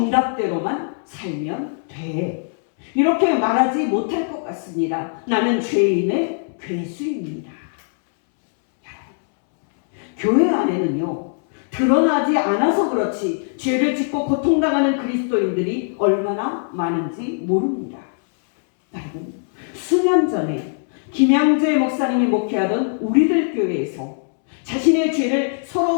살면 돼. 이렇게 말하지 못할 것 같습니다. 나는 죄인의 괴수입니다. 교회 안에는요, 드러나지 않아서 그렇지 죄를 짓고 고통당하는 그리스도인들이 얼마나 많은지 모릅니다. 여러분, 수년 전에 김양재 목사님이 목회하던 우리들 교회에서 자신의 죄를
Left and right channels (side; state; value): right; silent; 65 dB below the other